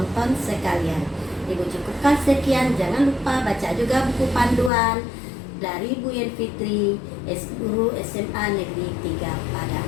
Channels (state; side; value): drops out; right; at 4.7 s